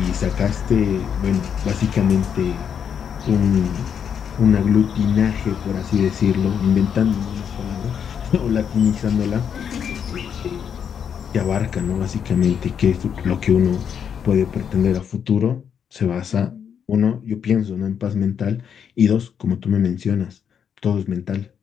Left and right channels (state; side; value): quieter; right; 7.8 dB